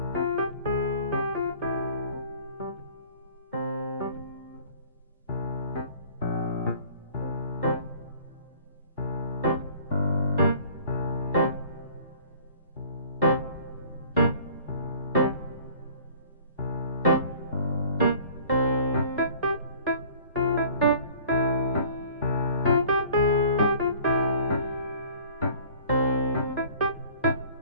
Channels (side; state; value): both; inverted; correlation -0.49